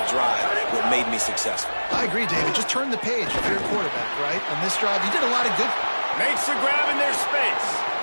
drive, what made me successful. I agree, David. Just turn the page if you're a quarterback, right? On this drive, you did a lot of good. Makes the grab in their space.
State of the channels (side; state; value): both; inverted; correlation -1.00